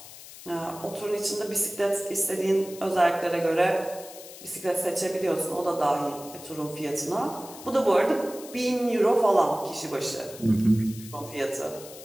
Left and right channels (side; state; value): left; noise; hiss, 16 dB below the sound